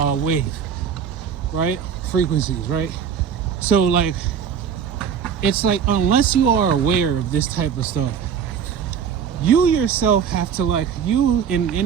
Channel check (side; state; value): left; quieter; 7.5 dB